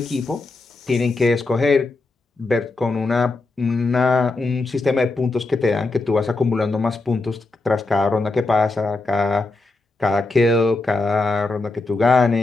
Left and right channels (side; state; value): right; quieter; 3.3 dB